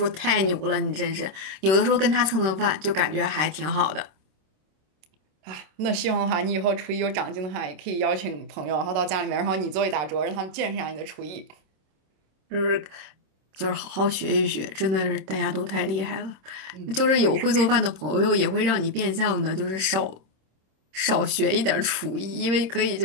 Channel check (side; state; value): left; late; 26 ms